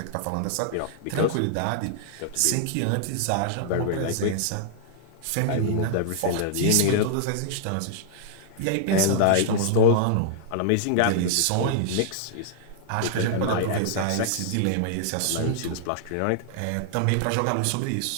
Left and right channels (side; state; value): both; different; correlation -0.01